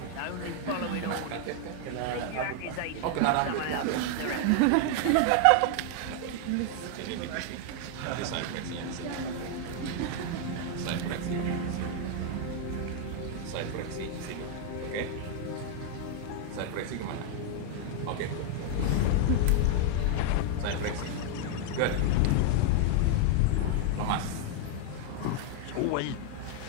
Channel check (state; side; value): different; both; correlation 0.00